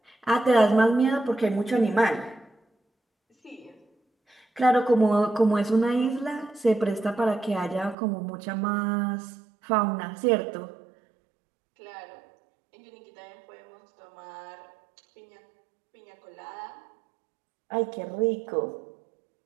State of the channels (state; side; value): drops out; left; at 8.0 s